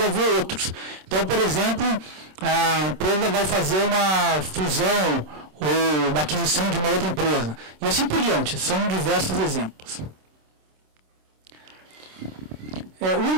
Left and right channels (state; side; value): late; left; 26 ms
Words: haver outros. Então, por exemplo, a empresa vai fazer uma fusão ou uma aquisição de uma outra empresa. E assim por diante, são diversos exemplos. O